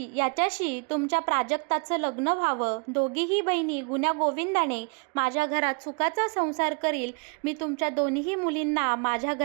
याच्याशी तुमच्या प्राजक्ताचं लग्न व्हावं. दोघीही बहिणी गुण्यागोविंदाने माझ्या घरात सुखाचा संसार करील. मी तुमच्या दोन्ही मुलींना माझ्या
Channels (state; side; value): quieter; left; 37.6 dB